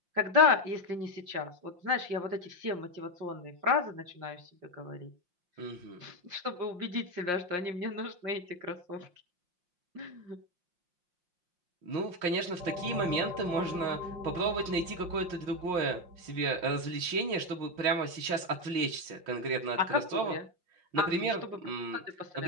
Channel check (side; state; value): left; late; 5.7 ms